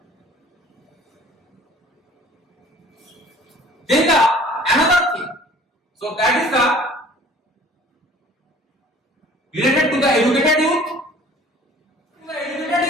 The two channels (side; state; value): both; normal; correlation 0.50